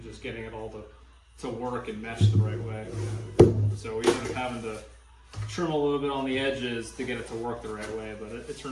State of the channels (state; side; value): identical; both; correlation 1.00